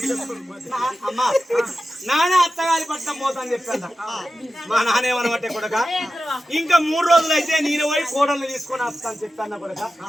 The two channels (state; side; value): normal; both; correlation 0.93